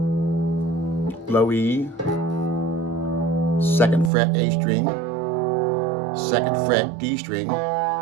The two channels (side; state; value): left; drops out; at 4.1 s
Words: low E, 2nd fret A string, 2nd fret D string,